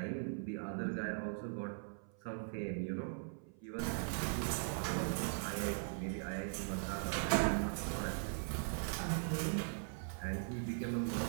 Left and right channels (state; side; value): silent; left; 51 dB below the other